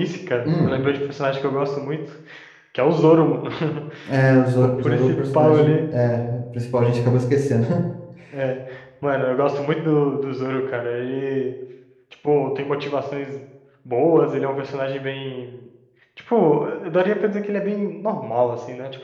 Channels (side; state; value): both; identical; correlation 1.00